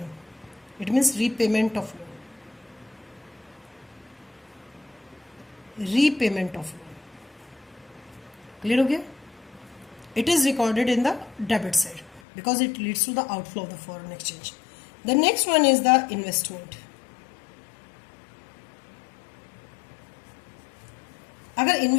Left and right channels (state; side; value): drops out; right; at 12.2 s